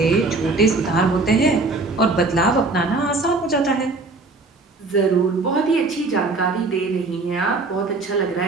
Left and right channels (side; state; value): left; quieter; 3.5 dB